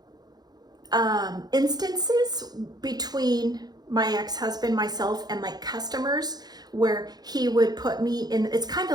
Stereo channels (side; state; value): left; late; 0.19 ms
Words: instances between my ex-husband, myself, and like customers where he would put me in, it's kind